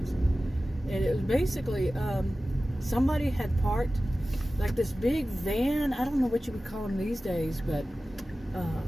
and it was basically, somebody had parked, like this big van, I don't know what you would call them these days, but,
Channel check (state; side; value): normal; both; correlation 0.95